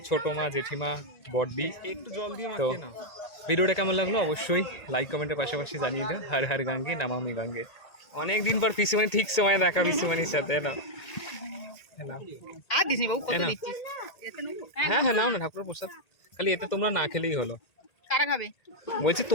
ছোটো মা, জেঠিমা, বড়দি। একটু জল দিয়ে তো ভিডিওটা কেমন লাগলো অবশ্যই লাইক কমেন্টের পাশাপাশি জানিয়ে দিও। হর হর গঙ্গে নমামি গঙ্গে। অনেক দিন পর পিসুমণি ঠিক সময় দেখা, পিসুমণির সাথে না। হ্যাঁ হ্যাঁ, নাও না ঠাকুরের প্রসাদ। খালি এতে তোমরা না খেলেই হলো। কারা খাবে? বলছি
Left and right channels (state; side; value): late; right; 1.8 ms